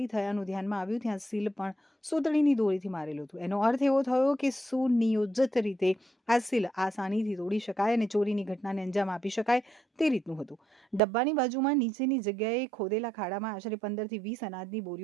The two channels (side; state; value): left; drops out; at 11.0 s